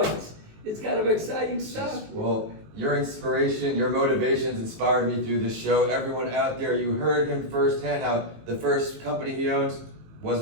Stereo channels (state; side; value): late; left; 19 ms